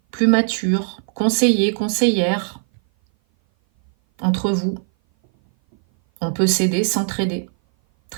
plus mature, conseiller, conseillère entre vous. On peut s'aider, s'entraider.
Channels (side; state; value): left; silent; 58 dB below the other